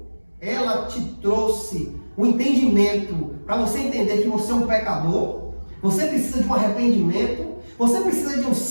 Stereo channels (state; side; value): inverted; both; correlation -1.00